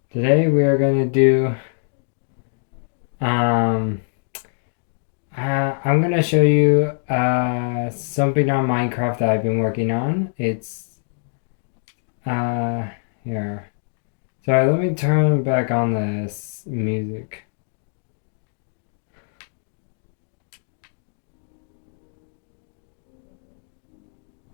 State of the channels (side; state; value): right; silent; digital silence